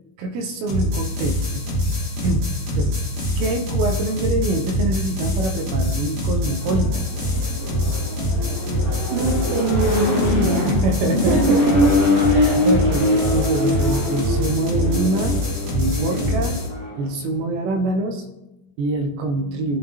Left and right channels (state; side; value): late; left; 21 ms